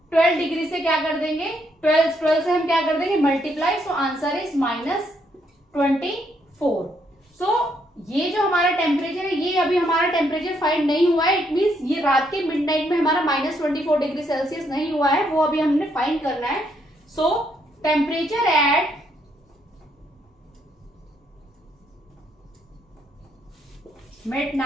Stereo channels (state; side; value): normal; both; correlation 0.74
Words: 12 डिग्री से क्या कर देंगे, 12 से हम क्या कर देंगे मल्टीप्लाई. So answer is -24. सो ये जो हमारा टेम्परेचर है ये अभी हमारा टेम्परेचर फाइंड नहीं हुआ है. इट मीन्स ये रात के मिडनाइट में हमारा -24 डिग्री सेल्सियस नहीं हुआ है, वो अभी हमने फाइंड करना है. सो temperature at